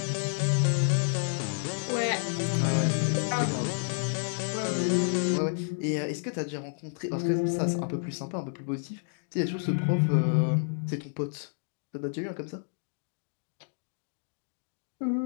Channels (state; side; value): silent; right; digital silence